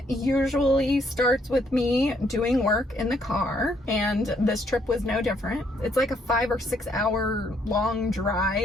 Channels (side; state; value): both; normal; correlation 0.70